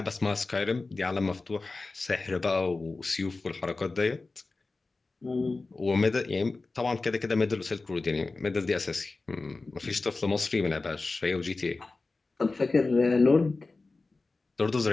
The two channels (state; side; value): quieter; right; 3.6 dB